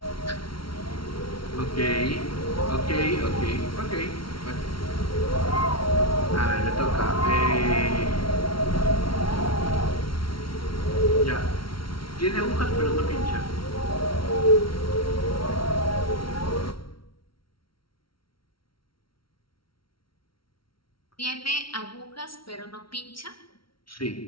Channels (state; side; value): late; right; 0.74 ms